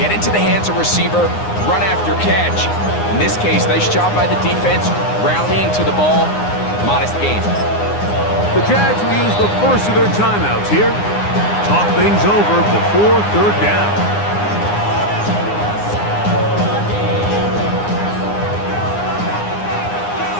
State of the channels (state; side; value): late; right; 9.7 ms